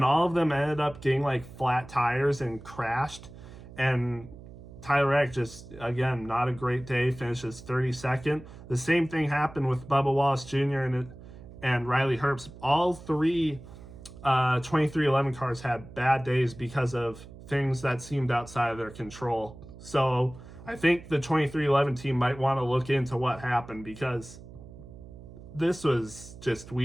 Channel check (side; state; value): right; noise; hum, 17 dB below the sound